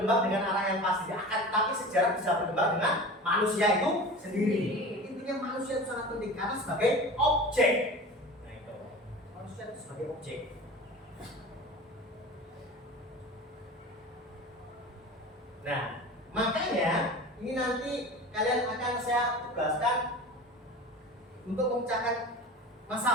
dengan arah yang pasti, tapi sejarah bisa berkembang dengan manusia itu sendiri. Intinya manusia itu sangat penting karena sebagai objek. Nah itu manusia itu sebagai objek. Nah makanya ini nanti kalian akan saya tugaskan untuk memecahkan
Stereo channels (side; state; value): both; normal; correlation 0.35